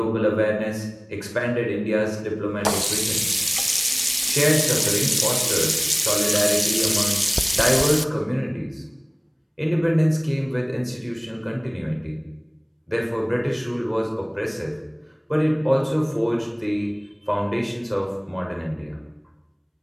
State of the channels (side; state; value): both; identical; correlation 1.00